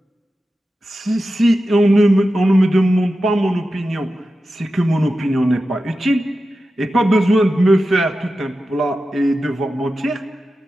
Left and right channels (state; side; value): normal; both; correlation 0.92